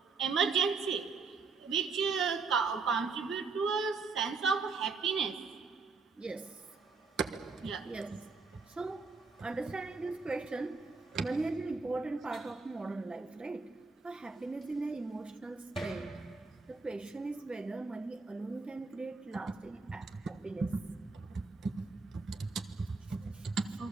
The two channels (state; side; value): quieter; left; 4.4 dB